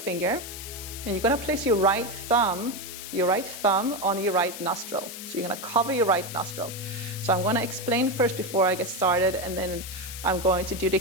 And you're going to place your right thumb on your right nostril. So you're going to cover your right nostril. So I'm going to explain first before I get started, and then I'm going to do the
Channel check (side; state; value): left; noise; hiss, 10 dB below the sound